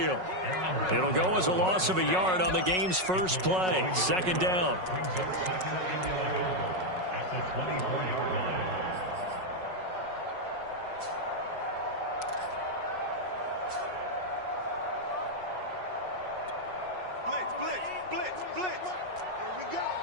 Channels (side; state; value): left; late; 5.4 ms